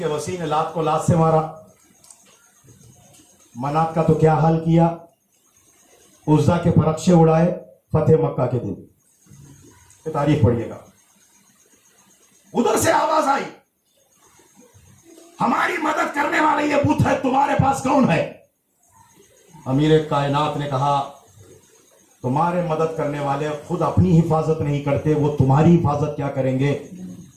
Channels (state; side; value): identical; both; correlation 1.00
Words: وسیع نے لات کو لات سے مارا، منات کا تو کیا حال کیا، عزا کے پرخشے اڑائے فتح مکہ کے دن. یہ تاریخ پڑھیے گا. ادھر سے آواز آئی، ہماری مدد کرنے والا یہ بت ہے، تمہارے پاس کون ہے؟ امیر کائنات نے کہا تمہارے مدد کرنے والے خود اپنی حفاظت نہیں کرتے، وہ تمہاری حفاظت کیا کریں گے؟